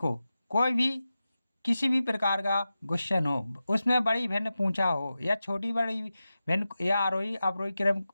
कोई भी किसी भी प्रकार का क्वेश्चन हो, उसमें बड़ी भिन्न पूछा हो या छोटी बड़ी भिन्न या आरोही अवरोही क्रम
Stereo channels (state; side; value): inverted; both; correlation -0.93